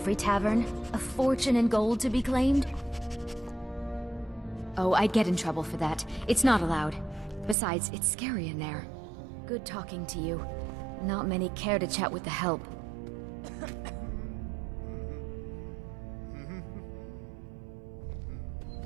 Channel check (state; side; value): drops out; left; at 7.6 s